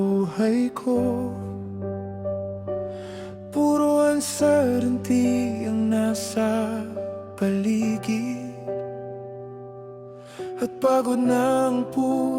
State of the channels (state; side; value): identical; both; correlation 1.00